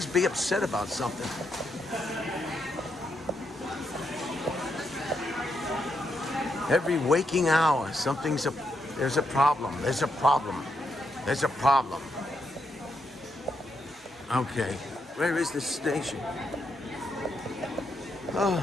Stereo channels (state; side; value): normal; both; correlation 0.80